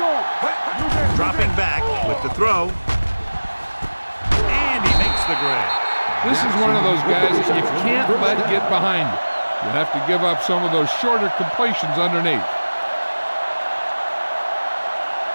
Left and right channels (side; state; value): both; inverted; correlation -1.00